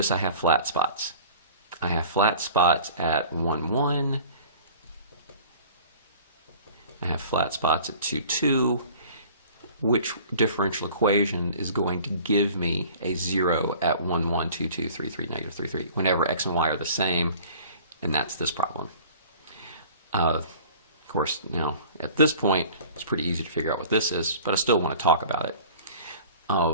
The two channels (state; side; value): inverted; both; correlation -0.46